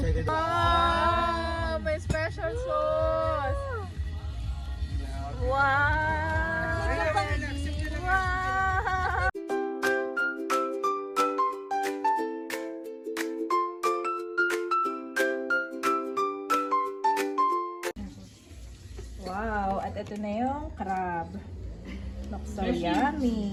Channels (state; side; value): identical; both; correlation 1.00